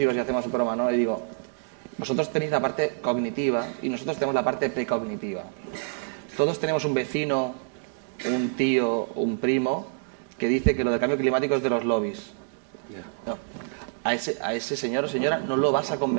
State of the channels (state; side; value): silent; left; digital silence